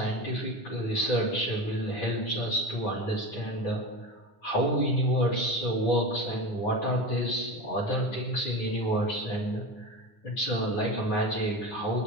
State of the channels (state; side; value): late; right; 10 ms